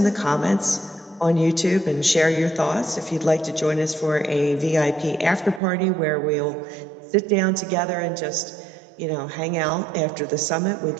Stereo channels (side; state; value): left; drops out; at 5.6 s